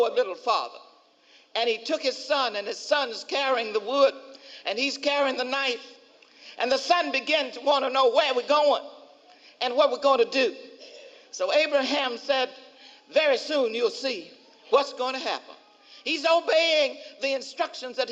a little farther. And he took his son, and his son's carrying the wood, and he's carrying the knife. And the son began to want to know where we're going and what we're going to do. So Abraham said, very soon you'll see what's going to happen. He's obeying the instructions that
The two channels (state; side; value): identical; both; correlation 1.00